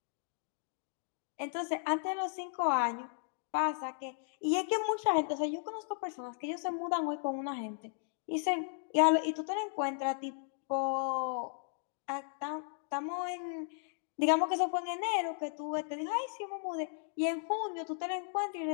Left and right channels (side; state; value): right; silent; digital silence